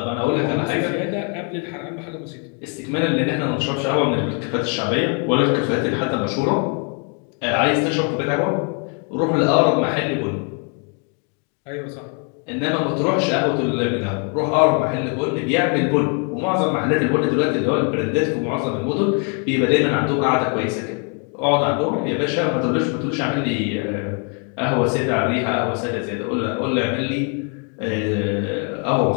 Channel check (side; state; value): right; quieter; 39.1 dB